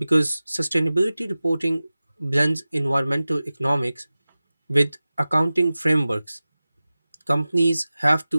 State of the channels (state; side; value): inverted; both; correlation -0.97